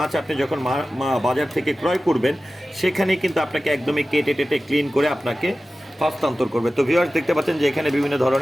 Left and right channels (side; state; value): both; normal; correlation 0.95